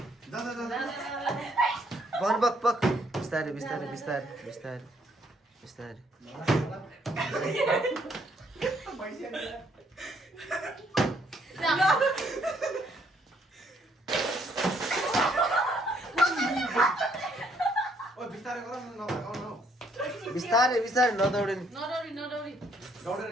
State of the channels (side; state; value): both; normal; correlation 0.68